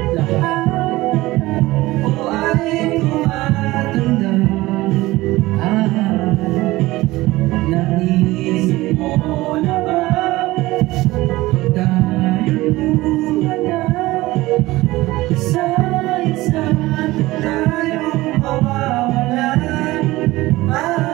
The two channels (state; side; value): quieter; left; 18.8 dB